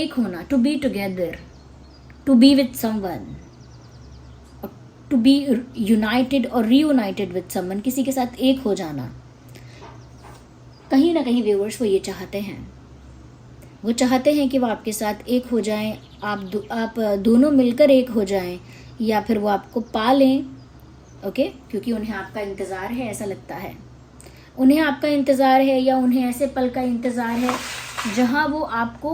होना, to be together, to be with someone, to be united और रीयूनाइटेड विद समवन, किसी के साथ एक हो जाना। कहीं ना कहीं व्यूअर्स वो ये चाहते हैं, वो चाहते हैं कि वो आपके साथ एक हो जाएं, आप दोनों मिलकर एक हो जाएं, या फिर वो आपको पा लें। ओके, क्योंकि उन्हें आपका इंतज़ार है, ऐसा लगता है उन्हें आपका इंतज़ार है, या उन्हें ऐसे पल का इंतज़ार है जहां वो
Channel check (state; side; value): identical; both; correlation 1.00